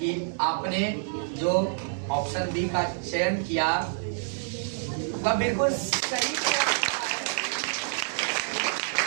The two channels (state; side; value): silent; left; digital silence